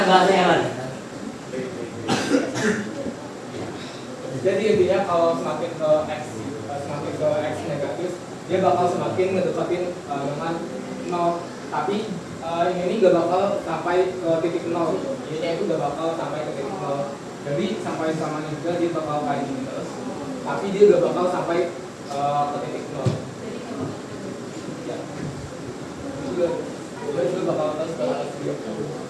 bahasanya, Man? jadi intinya kalau semakin ke X negatif dia bakal semakin ngedekatin dengan 0 tapi ini gak bakal sampai ke titik 0 Y-nya itu gak bakal sampai ke titik 0 jadi sampai samanya juga dia bakal kayak gini terus tapi dia gak bakal sampai ke titik 0 ya dia juga bakal terus dia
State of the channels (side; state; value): both; identical; correlation 1.00